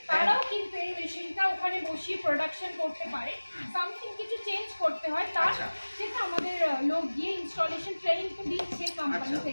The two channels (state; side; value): inverted; both; correlation -1.00